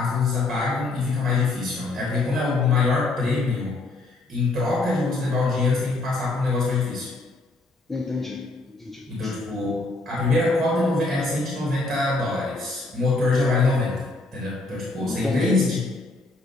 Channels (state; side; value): quieter; right; 3.1 dB